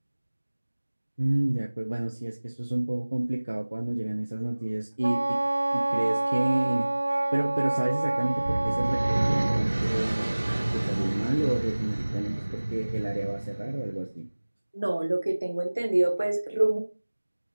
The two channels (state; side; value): inverted; both; correlation -1.00